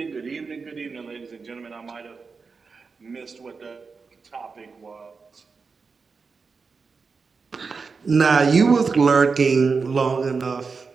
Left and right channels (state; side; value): quieter; left; 4.8 dB